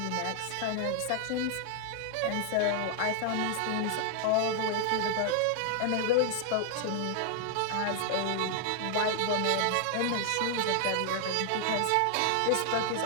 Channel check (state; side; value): different; both; correlation 0.00